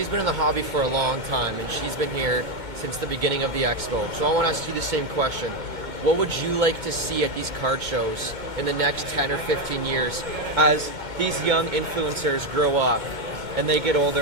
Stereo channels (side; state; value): left; late; 2.1 ms